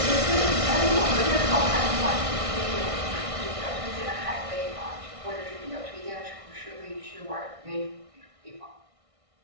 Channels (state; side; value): late; left; 1.6 ms